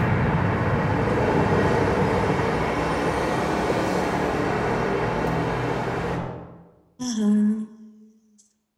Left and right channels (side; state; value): both; identical; correlation 1.00